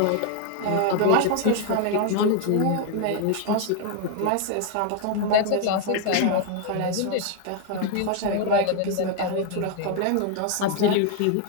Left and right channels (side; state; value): both; different; correlation 0.00